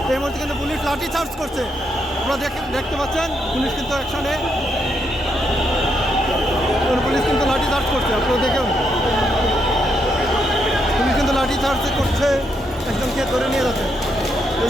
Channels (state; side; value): normal; both; correlation 0.78